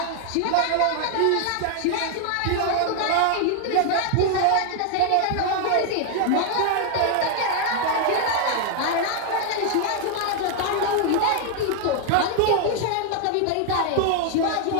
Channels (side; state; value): both; different; correlation 0.00